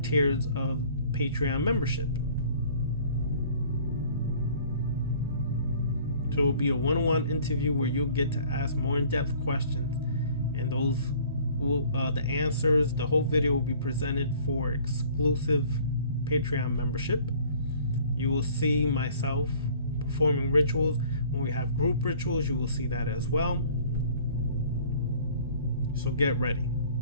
of Patreon membership. So it will be a one-on-one interview where you'll get to ask more in-depth questions, and those will the answers, the whole video will be presented for exclusive Patreon membership. You will see myself performing rituals. When we have group rituals, you will see that as well. So get ready.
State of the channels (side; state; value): both; inverted; correlation -0.53